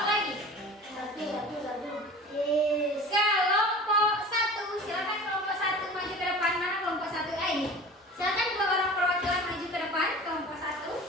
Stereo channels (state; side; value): normal; both; correlation 0.39